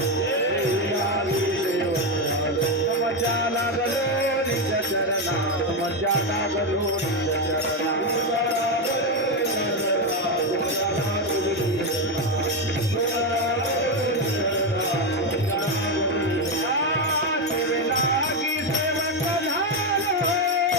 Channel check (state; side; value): normal; both; correlation 0.09